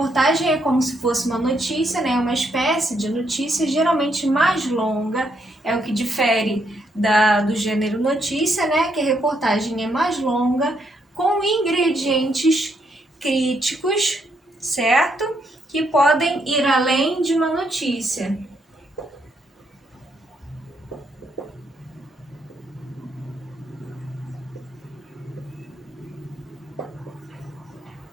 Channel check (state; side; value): normal; both; correlation 0.76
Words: é como se fosse uma notícia, né? Uma espécie de notícia, geralmente mais longa, é o que difere do gênero notícia, né? Que a reportagem é mais longa, com ingredientes críticos, certo? Que podem ir além de uma notícia.